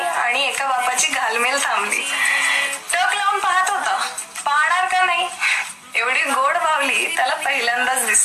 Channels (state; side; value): identical; both; correlation 1.00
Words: एका बापाची घालमेल थांबली. टक लावून पाहत होता. पाहणार का नाही. एवढी गोड बावली त्याला पहिल्यांदाच